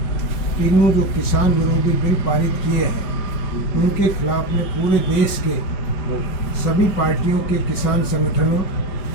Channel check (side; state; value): right; late; 5.2 ms